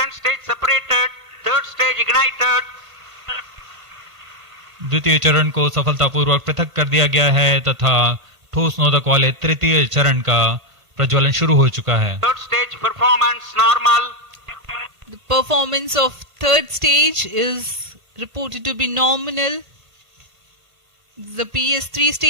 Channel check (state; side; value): late; left; 1.5 ms